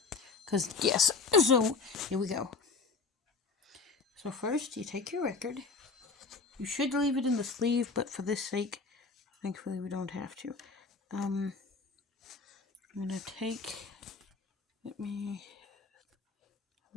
Because, yes. So, here we go. So first, you take your record. You should leave it in the sleeve, but for this sake, thankfully we don't have to. I'm gonna take... We'll be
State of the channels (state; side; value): quieter; right; 4.3 dB